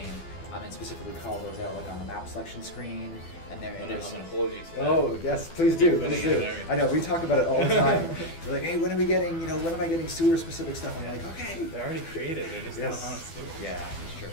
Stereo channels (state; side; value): late; right; 12 ms